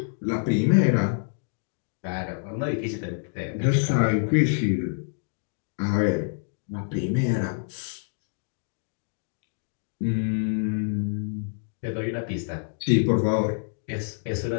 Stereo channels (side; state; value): right; silent; digital silence